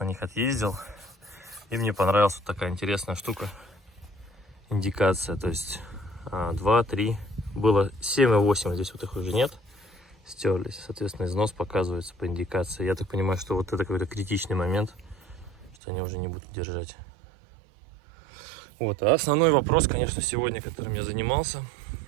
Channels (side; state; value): left; drops out; at 15.8 s